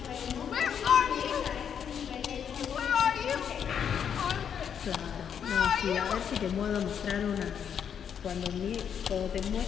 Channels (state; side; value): quieter; right; 8.0 dB